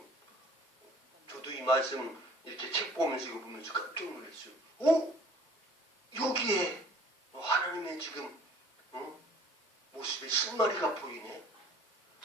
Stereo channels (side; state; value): both; normal; correlation 0.52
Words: 저도 이 말씀 이렇게 책 보면서 이거 보면서 깜짝 놀랐어요. 여기에 하나님의 지금 모습의 신마리가 보이네.